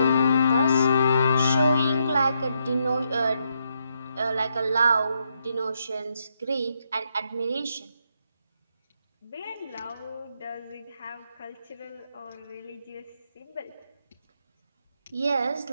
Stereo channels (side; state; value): both; inverted; correlation -0.78